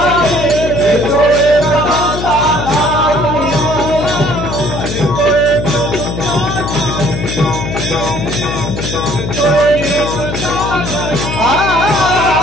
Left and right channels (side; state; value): left; noise; hum, 5 dB below the sound